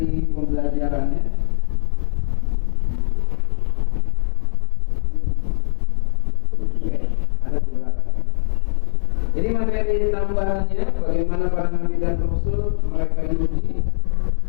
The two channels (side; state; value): right; silent; digital silence